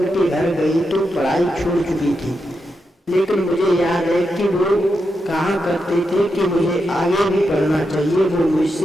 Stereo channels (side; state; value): both; normal; correlation 0.86